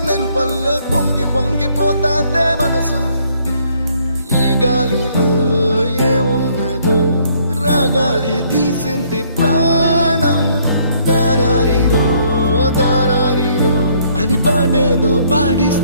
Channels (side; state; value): both; inverted; correlation -0.66